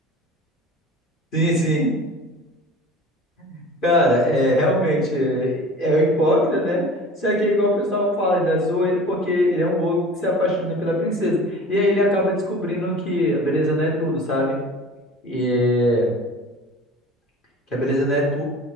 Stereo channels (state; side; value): normal; both; correlation 0.41